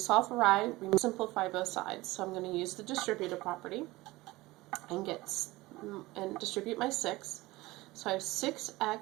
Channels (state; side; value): quieter; left; 19.9 dB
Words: for y, we simplify both sides. So I'm going to use the distributive property and distribute my 6. So I have